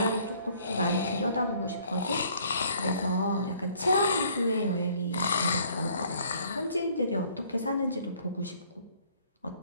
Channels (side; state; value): both; inverted; correlation -0.60